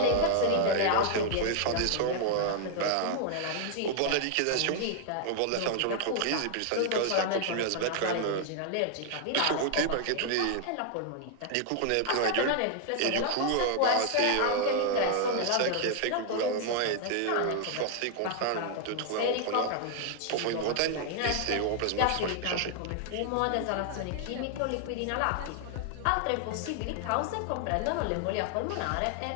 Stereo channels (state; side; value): different; both; correlation 0.00